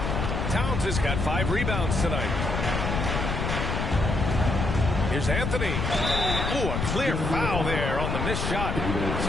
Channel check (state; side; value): noise; left; rumble, 1 dB below the sound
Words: Towns has got 5 rebounds tonight. Here's Anthony. Ooh, a clear foul there on the missed shot.